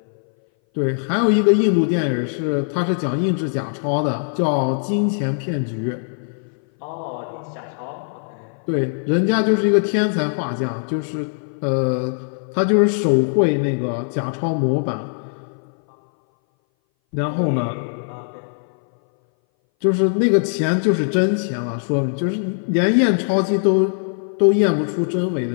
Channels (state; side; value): silent; right; 60 dB below the other